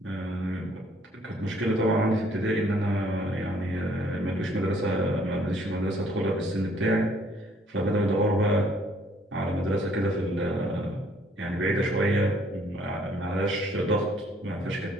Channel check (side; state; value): both; normal; correlation 0.62